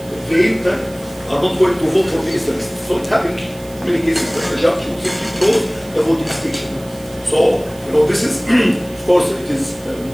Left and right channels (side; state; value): right; noise; hiss, 22 dB below the sound